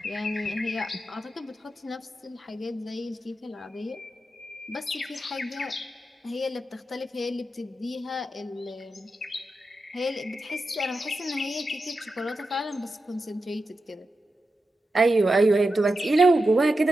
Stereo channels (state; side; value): normal; both; correlation 0.90